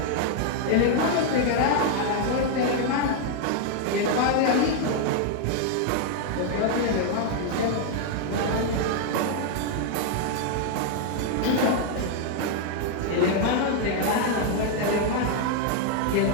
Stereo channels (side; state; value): both; different; correlation 0.00